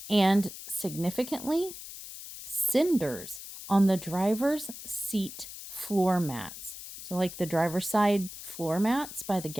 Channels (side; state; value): left; noise; hiss, 12 dB below the sound